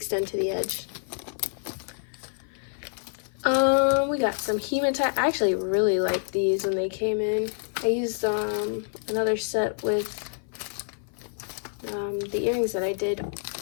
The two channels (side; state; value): right; silent; 55 dB below the other